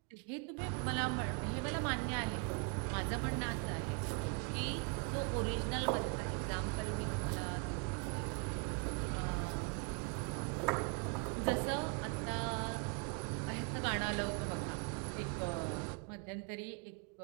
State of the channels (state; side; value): quieter; left; 32.7 dB